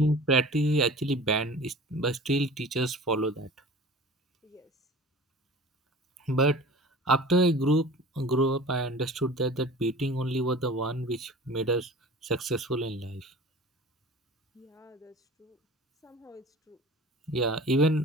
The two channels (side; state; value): both; normal; correlation 0.41